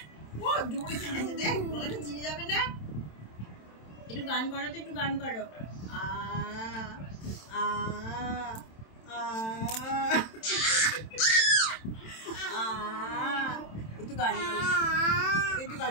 একটু গান করো তো, একটু গান করো। একটু গান করো, একটু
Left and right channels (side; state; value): right; late; 27 ms